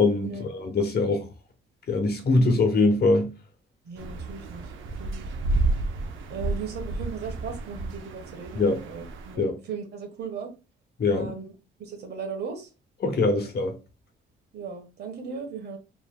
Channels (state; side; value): normal; both; correlation 0.58